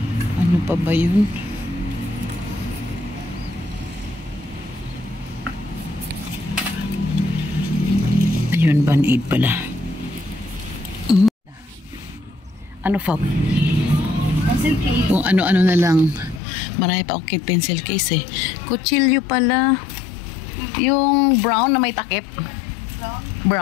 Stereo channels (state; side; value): drops out; right; at 16.4 s